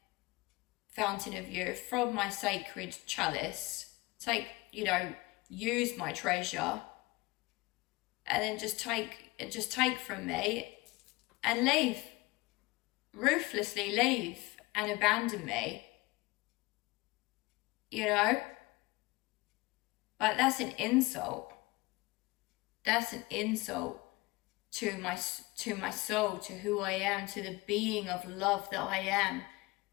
fountain of youth, from my sacred chalice, use my treasure, and then just take from me and leave. Ruthlessly leave and abandon me. Like, that's an insult. That's an insult to my soul, to who I am, to the being of love that I am,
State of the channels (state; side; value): quieter; right; 22.6 dB